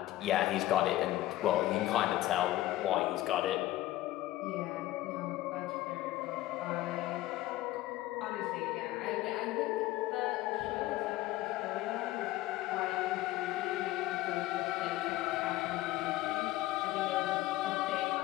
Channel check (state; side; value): quieter; right; 16.2 dB